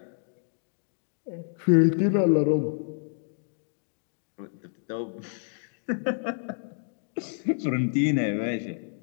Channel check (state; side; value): silent; right; 59 dB below the other